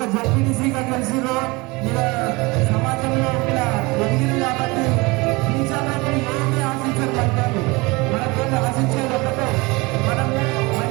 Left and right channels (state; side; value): quieter; left; 24.7 dB